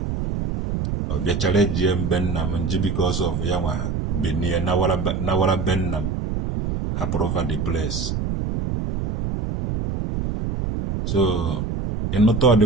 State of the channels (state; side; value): noise; right; rumble, 2 dB below the sound